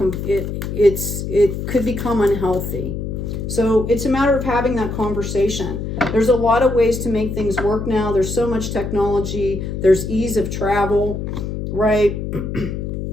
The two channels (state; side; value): noise; left; hum, 5 dB below the sound